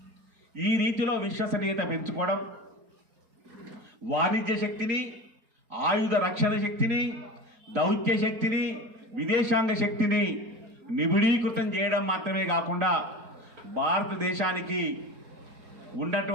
ఈ రీతిలో విశ్వసనీయత పెంచుకోవడం, వాణిజ్య శక్తిని, ఆయుధ రక్షణ శక్తిని, దౌత్య శక్తిని, విదేశాంగ శక్తిని నిబిడీకృతం చేయడం మాత్రమే కాకుండా భారతదేశానికి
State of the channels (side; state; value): left; late; 4.3 ms